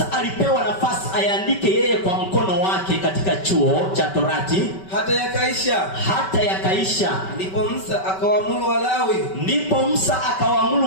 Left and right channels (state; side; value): late; right; 5.2 ms